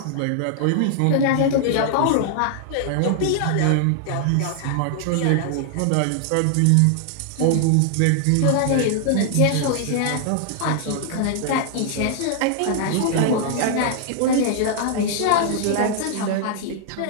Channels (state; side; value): different; both; correlation 0.00